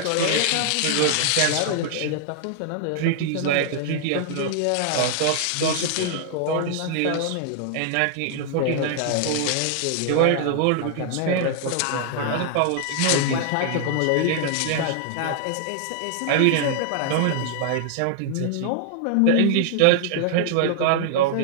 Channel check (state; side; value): different; both; correlation 0.00